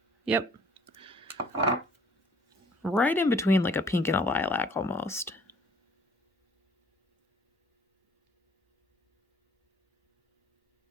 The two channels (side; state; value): both; normal; correlation 0.56